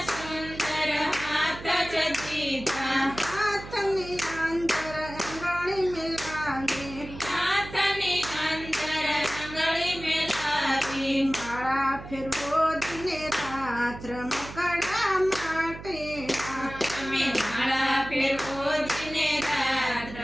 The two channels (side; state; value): right; noise; hum, 13 dB below the sound